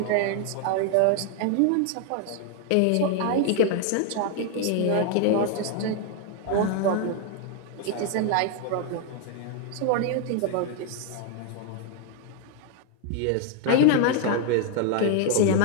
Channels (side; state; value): both; different; correlation 0.00